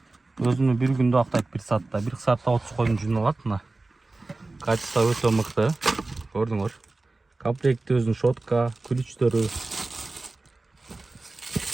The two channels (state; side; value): quieter; left; 3.3 dB